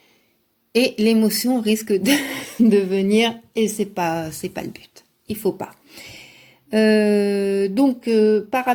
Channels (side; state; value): both; identical; correlation 1.00